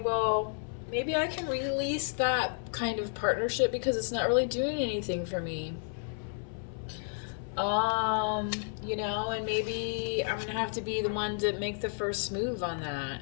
well, maybe I can release that kind of partnership because it's not really doing anything for me. You know, and maybe I'm gonna have to be the one to make the first move on that,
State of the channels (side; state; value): right; silent; 57 dB below the other